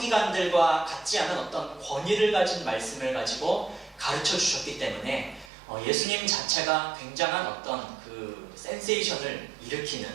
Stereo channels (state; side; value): drops out; left; at 5.5 s